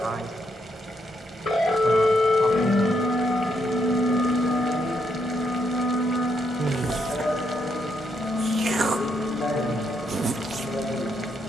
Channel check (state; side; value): normal; both; correlation 0.77